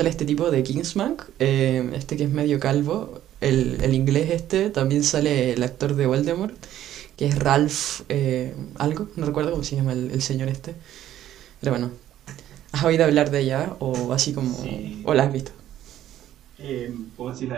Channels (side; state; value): left; quieter; 12.2 dB